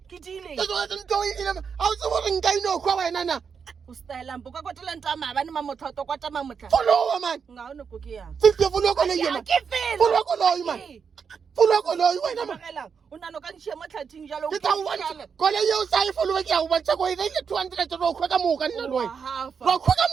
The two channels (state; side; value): quieter; left; 6.3 dB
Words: Ke dile. ke kwatetse ntse o ile a o tsebo re nka ino kwa wena na O style mpo ka kwatela ntwa mabane mamotloto kwata mamotla. followa mane Nga ona go ke yang. fifty followa ko le Ya yena ke fela. followa ko le mane followa ko le wena mane Magela, o nano ka ntšhia mo tlhathing jalo. ke tla o bontsha ko le ye o sa e followa ke a o bontsha ko ile 200 ro khwa ka moka nna le wena ro khwa ka